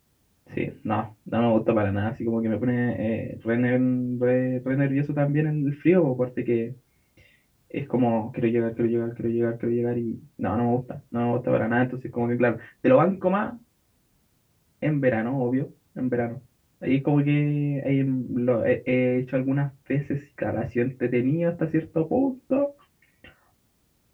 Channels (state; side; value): identical; both; correlation 1.00